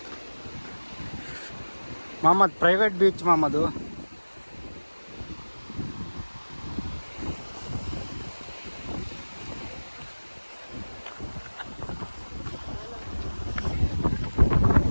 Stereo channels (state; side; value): inverted; both; correlation -1.00